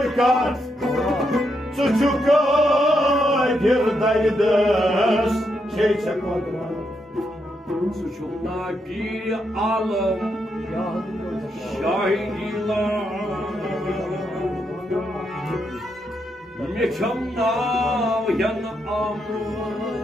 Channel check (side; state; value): both; normal; correlation 0.81